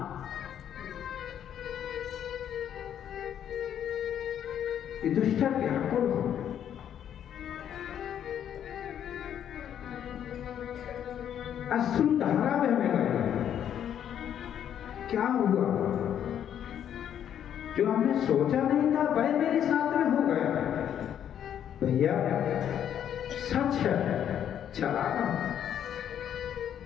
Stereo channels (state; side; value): quieter; right; 9.7 dB